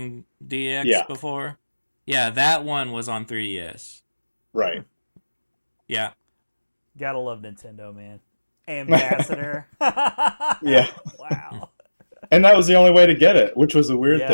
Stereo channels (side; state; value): both; inverted; correlation -1.00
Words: DX before. Yeah, that one was on 3DS. Right. Yeah. Gotta love Nintendo, man. Ambassador. Yeah. Wow. And that was the only way to get it, which was a weird